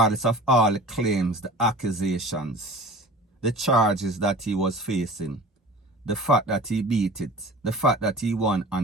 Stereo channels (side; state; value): both; normal; correlation 0.40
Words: of all the claims, the accusations, the charges that he was facing, the fact that he beat it, the fact that he won